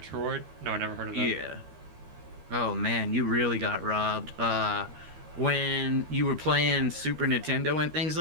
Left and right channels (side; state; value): left; late; 13 ms